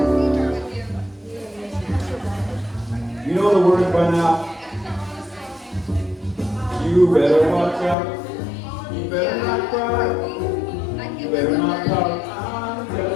You know the words by now. You better watch out. You better not cry. You better not pout. I'm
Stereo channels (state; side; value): drops out; right; at 8.0 s